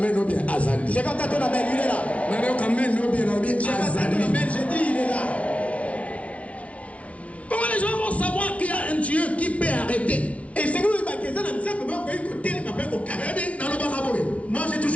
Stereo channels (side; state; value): right; late; 0.064 ms